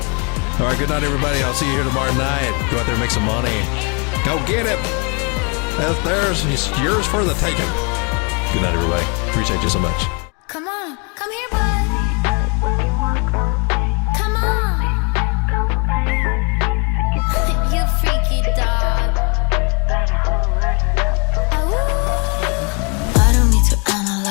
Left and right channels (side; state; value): right; quieter; 34.1 dB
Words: All right, good night, everybody. I'll see you here tomorrow night. Go out there and make some money. Go get it. That's theirs. It's yours for the taking. Good night, everybody. Appreciate you so much. Come on, come here, bud. Come on. You freaky dog. I don't need to